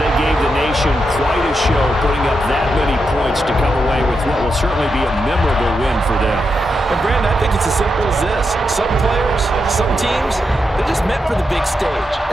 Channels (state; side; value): normal; both; correlation 0.85